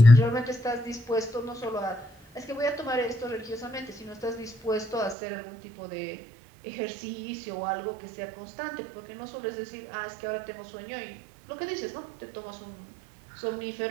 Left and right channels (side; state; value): left; drops out; at 5.2 s